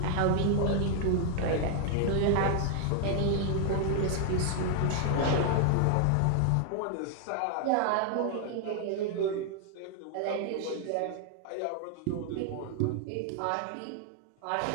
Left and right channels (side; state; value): both; different; correlation 0.00